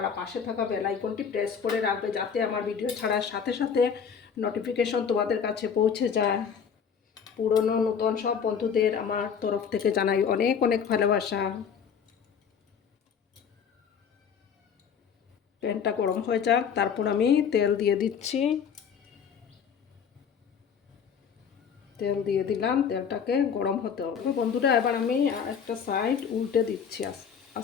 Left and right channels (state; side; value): quieter; right; 7.0 dB